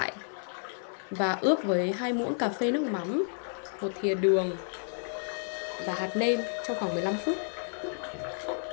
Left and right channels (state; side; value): silent; right; digital silence